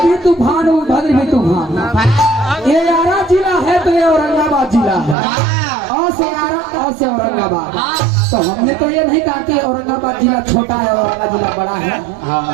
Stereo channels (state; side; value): drops out; left; at 5.2 s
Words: भी तूफान उधर भी तूफान। ये आरा जिला है तो ये औरंगाबाद जिला है, और से आरा और से औरंगाबाद। तो हमने तो ये नहीं कहा कि औरंगाबाद जिला छोटा है और आरा जिला बड़ा है,